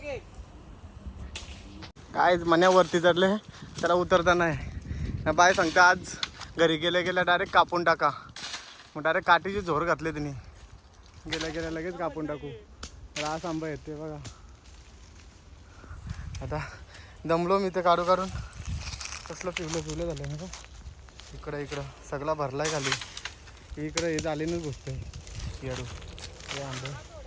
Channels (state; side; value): identical; both; correlation 1.00